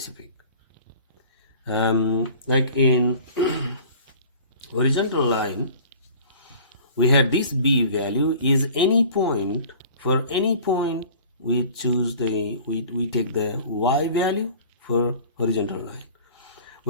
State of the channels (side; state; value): both; inverted; correlation -0.45